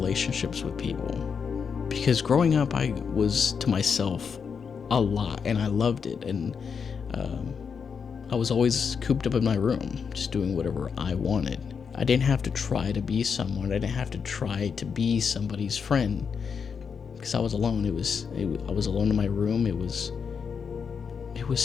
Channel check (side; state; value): right; quieter; 6.3 dB